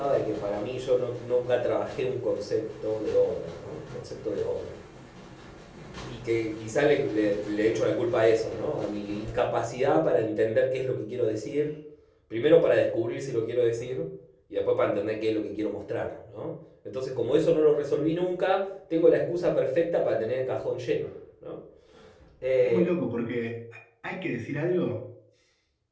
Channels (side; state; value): both; identical; correlation 1.00